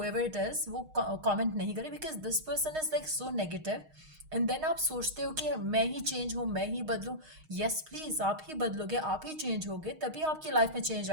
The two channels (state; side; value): late; left; 6.4 ms